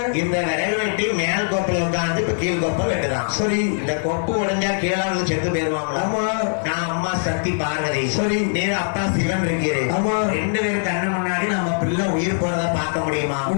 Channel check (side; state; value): right; silent; digital silence